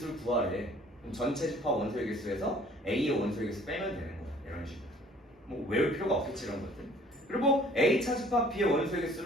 구하래. 그럼 전체 집합 원소의 개수에서 A의 원소의 개수 빼면 되는 거야. 이런 식으로. 뭐 외울 필요가 없겠지 이런 것들. 그리고 A 차집합 B의 원소의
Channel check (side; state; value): both; normal; correlation 0.55